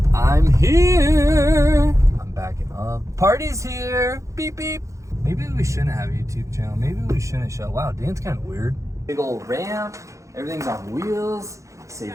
I'm here. I'm backing up. Party's here, beep beep. Maybe we shouldn't have a YouTube channel. Maybe we shouldn't show. Wow, Dan's kind of weird. Big old ramp, everything's on wheels.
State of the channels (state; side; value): late; left; 0.15 ms